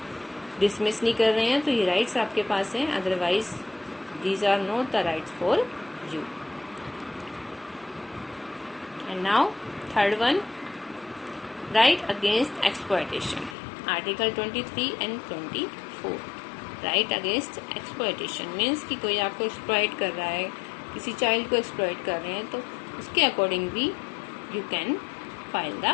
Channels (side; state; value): right; drops out; at 13.6 s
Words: डिसमिस नहीं कर रहे हैं, तो ये राइट्स आपके पास हैं. Otherwise these are not the rights for you. And now third one, right against exploitation. Article 23 and 24. Right against exploitation means कि कोई आपको exploit कर रहा है, किसी चाइल्ड को exploit कर रहे हैं, तो उसके अकॉर्डिंग भी you can file the